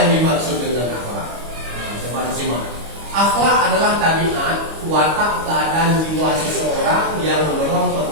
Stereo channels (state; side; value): late; left; 25 ms